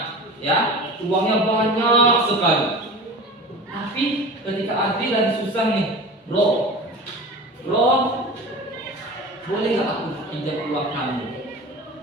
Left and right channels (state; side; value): normal; both; correlation 0.34